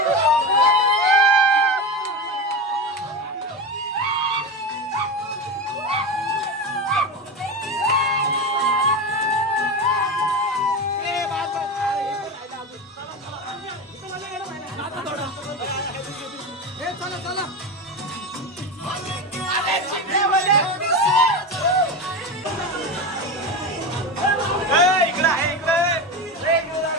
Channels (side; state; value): both; normal; correlation 0.21